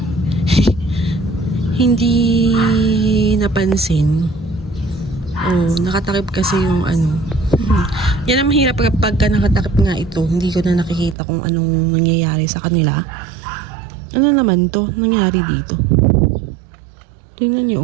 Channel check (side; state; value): left; drops out; at 11.2 s